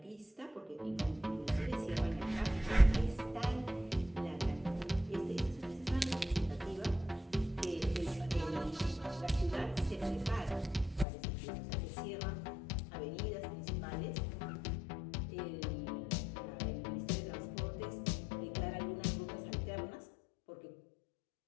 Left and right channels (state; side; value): drops out; right; at 11.1 s